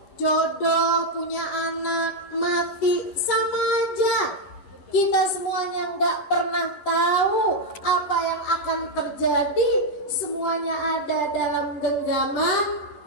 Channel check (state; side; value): late; right; 11 ms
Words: jodoh, punya anak, mati, sama aja. Kita semuanya nggak pernah tahu apa yang akan terjadi. Semuanya ada dalam genggaman